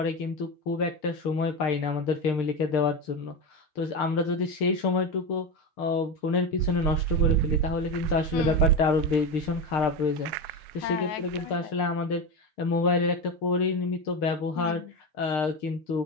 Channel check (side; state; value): right; late; 6.6 ms